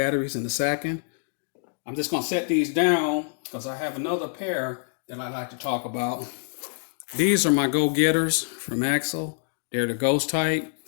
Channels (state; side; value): silent; right; digital silence